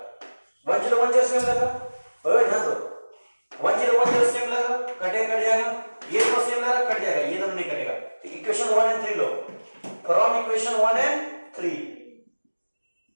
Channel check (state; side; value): inverted; both; correlation -1.00